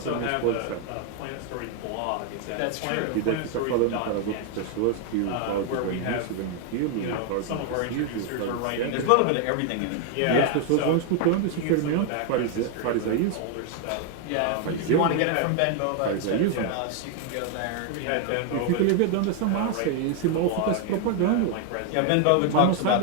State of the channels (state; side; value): different; both; correlation 0.00